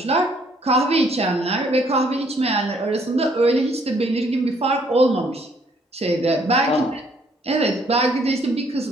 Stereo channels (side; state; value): both; normal; correlation 0.65